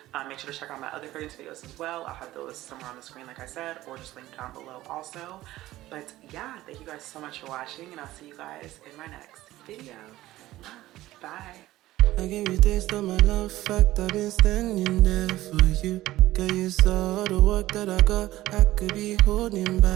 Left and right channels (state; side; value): quieter; left; 16.0 dB